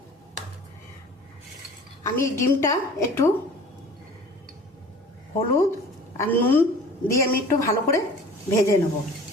আমি এই ডিমটা একটু হলুদ আর নুন দিয়ে আমি একটু ভালো করে ভেজে নেব।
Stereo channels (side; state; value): both; normal; correlation 0.44